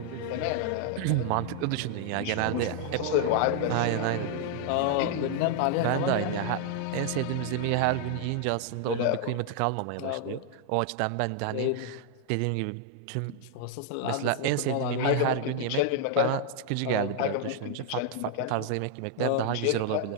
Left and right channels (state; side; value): different; both; correlation 0.00